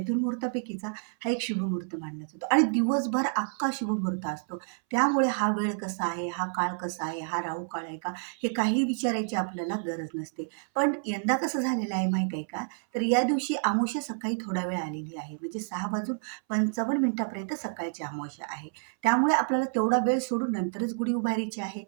मुहूर्तापैकीचा हा एक शुभमुहूर्त मानला जातो आणि दिवसभर अख्खा शुभमुहूर्त असतो. त्यामुळे हा वेळ कसा आहे, हा काळ कसा आहे, हा राहू काळ आहे का, हे काही विचारायची आपल्याला गरज नसते. पण यंदा कसं झालेलं आहे माहीत आहे का? तर या दिवशी अमावस्या सकाळी थोडा वेळ आलेली आहे, म्हणजे 6:55 सकाळची अमावस्या आहे. त्यामुळे आपल्याला तेवढा वेळ सोडून नंतरच गुढी उभारायची आहे,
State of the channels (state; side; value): silent; left; 58 dB below the other